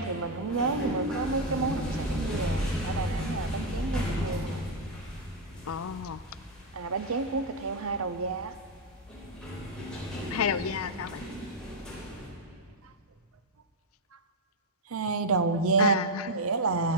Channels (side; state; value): both; normal; correlation 0.00